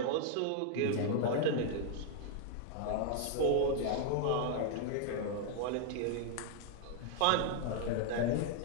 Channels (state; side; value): different; both; correlation 0.00